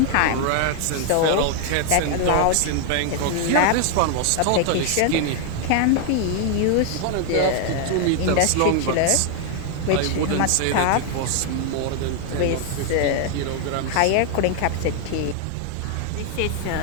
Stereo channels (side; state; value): both; different; correlation 0.00